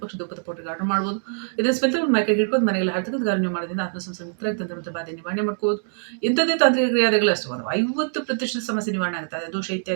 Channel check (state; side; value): silent; left; digital silence